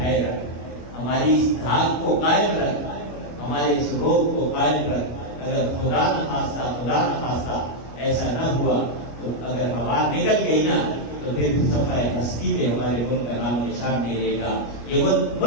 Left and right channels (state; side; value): late; right; 25 ms